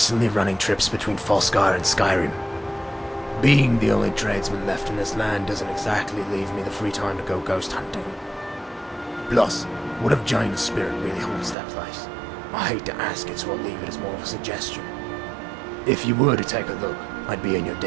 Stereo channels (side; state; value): left; drops out; at 11.6 s